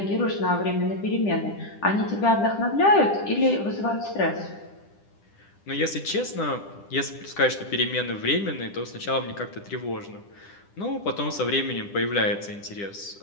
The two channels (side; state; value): right; late; 10 ms